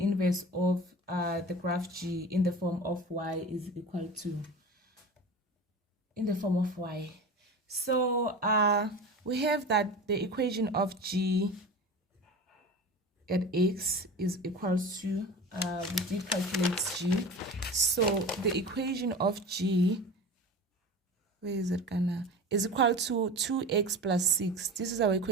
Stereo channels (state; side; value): normal; both; correlation 0.33